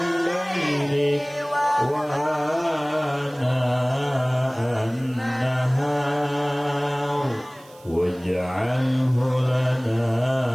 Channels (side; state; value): right; noise; hiss, 26 dB below the sound